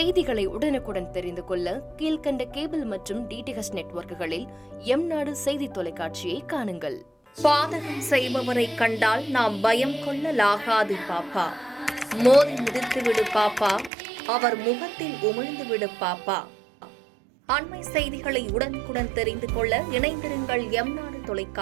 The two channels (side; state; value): left; drops out; at 13.9 s